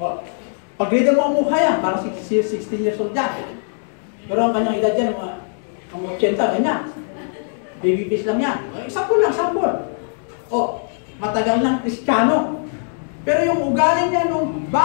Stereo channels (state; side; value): silent; right; digital silence